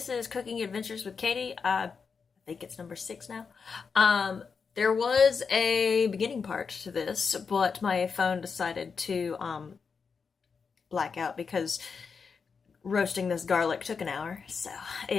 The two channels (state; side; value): quieter; right; 5.6 dB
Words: is Cooking Adventures with Katie. I think it's number 6 now. There was a beginning part to this, but my phone decided to black out because roasting this garlic took an hour. So